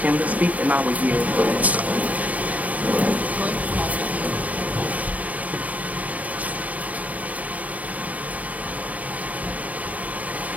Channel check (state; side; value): late; left; 0.072 ms